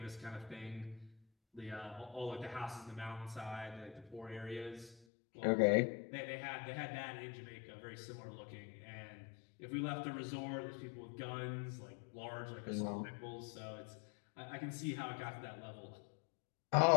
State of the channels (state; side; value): drops out; right; at 5.0 s